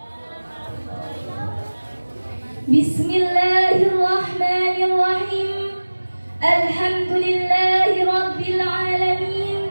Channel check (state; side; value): inverted; both; correlation -1.00